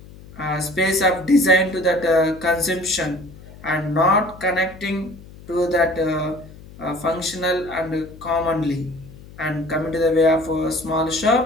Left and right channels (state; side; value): noise; left; hum, 19 dB below the sound